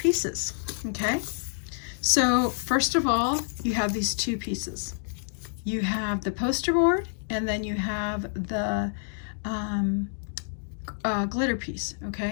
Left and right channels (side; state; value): right; silent; digital silence